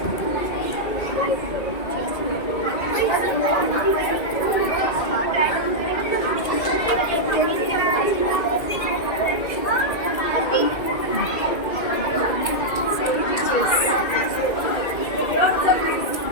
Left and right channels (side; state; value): right; late; 2.2 ms